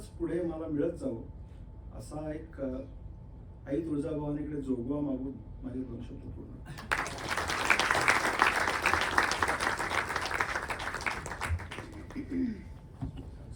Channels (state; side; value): identical; both; correlation 1.00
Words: पुढे मला मिळत जावं असा एक आई तुळजाभवानीकडे जोगवा मागून माझे 2 शब्द पूर्ण.